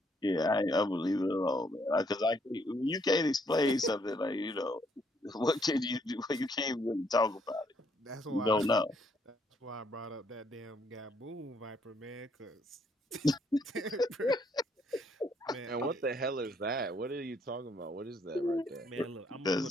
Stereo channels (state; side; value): normal; both; correlation 0.70